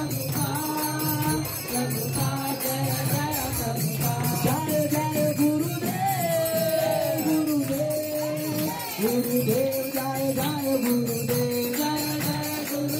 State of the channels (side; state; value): both; identical; correlation 1.00